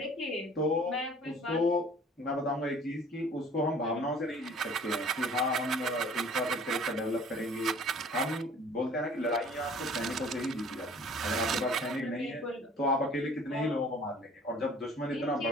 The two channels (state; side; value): normal; both; correlation 0.50